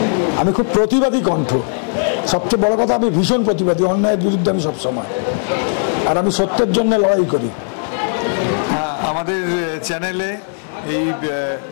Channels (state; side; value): silent; right; digital silence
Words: আমি খুব প্রতিবাদী কণ্ঠ, সবচেয়ে বড় কথা আমি ভীষণ প্রতিবাদী, অন্যায়ের বিরুদ্ধে আমি সবসময়, আর আমি সত্যের জন্য লড়াই করি। আমাদের চ্যানেলে এই